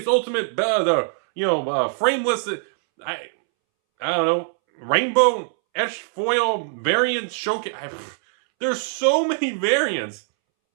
ultimate, frameless. I don't know, rainbow etched foil variant showcase. There's so many variants.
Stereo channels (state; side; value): silent; left; 64 dB below the other